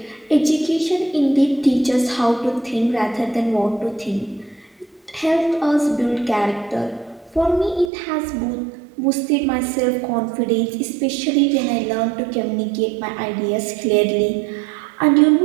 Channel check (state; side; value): drops out; left; at 7.9 s